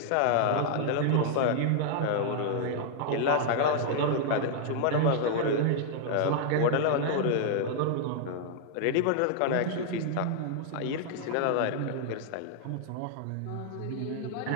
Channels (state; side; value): different; both; correlation -0.01